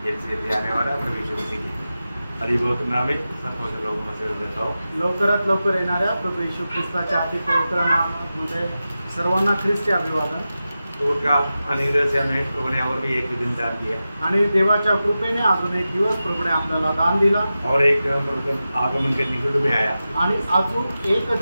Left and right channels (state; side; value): inverted; both; correlation -0.93